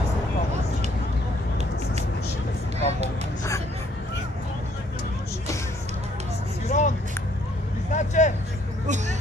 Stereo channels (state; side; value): normal; both; correlation 0.65